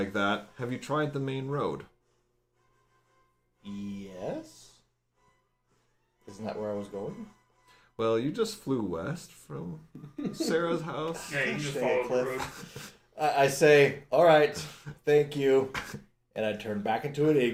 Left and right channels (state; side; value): identical; both; correlation 1.00